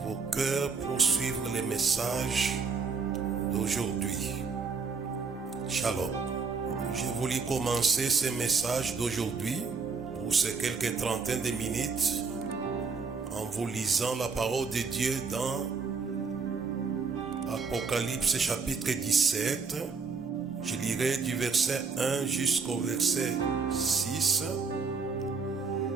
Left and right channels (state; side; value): quieter; left; 4.9 dB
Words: vos cœurs pour suivre les messages d'aujourd'hui. Shalom. J'ai voulu commencer ce message d'aujourd'hui pour ces quelques trentaines de minutes en vous lisant la parole de Dieu dans Apocalypse chapitre 17. Je lirai du verset 1 jusqu'au verset 6